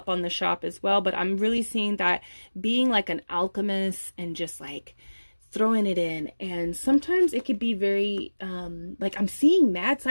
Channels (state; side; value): inverted; both; correlation -1.00